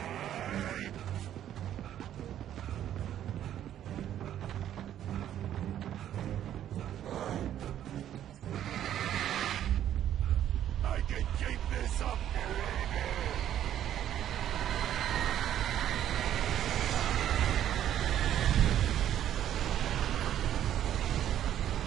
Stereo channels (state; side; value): quieter; left; 11.1 dB